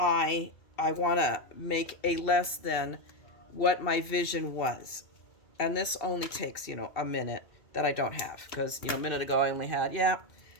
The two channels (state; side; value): late; right; 2.7 ms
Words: want to make a less than what my vision was. And this only takes, a minute that I don't have, because, a minute ago I only had, yeah,